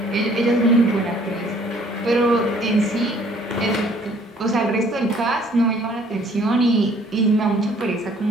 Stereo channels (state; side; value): normal; both; correlation 0.58